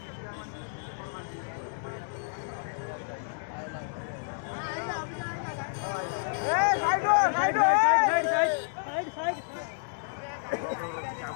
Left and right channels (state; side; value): silent; right; 58 dB below the other